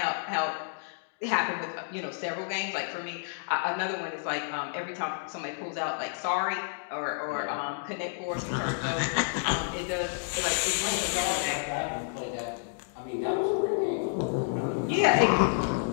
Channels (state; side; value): silent; right; digital silence